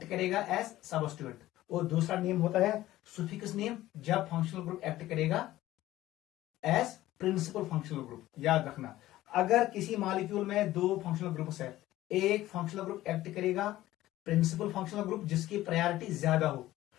करेगा एज सबस्टिट्यूएंट, और दूसरा नेम होता है सुफिक्स नेम जब फंक्शनल ग्रुप एक्ट करेगा एज प्रिंसिपल फंक्शनल ग्रुप। याद रखना, अगर किसी मॉलिक्यूल में दो फंक्शनल ग्रुप्स है, एक फंक्शनल ग्रुप एक्ट करेगा प्रिंसिपल फंक्शनल ग्रुप जिसकी प्रायोरिटी ज्यादा हो,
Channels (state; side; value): quieter; right; 15.4 dB